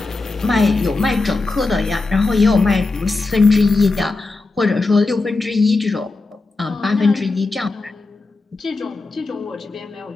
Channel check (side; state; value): right; quieter; 3.5 dB